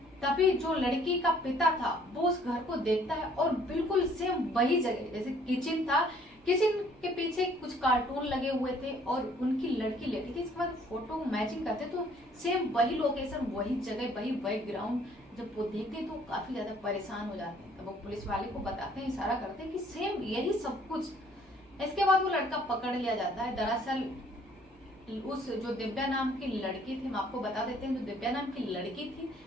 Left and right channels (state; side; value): normal; both; correlation 0.60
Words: तभी जो लड़की का पिता था वो उस घर को देखता है और बिल्कुल सेम वही जगह, जैसे किचन था, किचन के पीछे कुछ कार्टून लगे हुए थे और उनकी लड़की लेटी थी। इसके बाद फोटो मैचिंग करते तो सेम वही लोकेशन, वही जगह, वही बैकग्राउंड। जब वो देखते तो काफी ज्यादा परेशान हो जाते हैं। तब वो पुलिस वाले को बताते हैं, इशारा करते हैं कि सेम यही सब कुछ। इसके बाद वो लड़का पकड़ लिया जाता है। दरअसल उस जो दिव्या नाम की लड़की थी, हम आपको बता देते हैं, जो दिव्या नाम की लड़की थी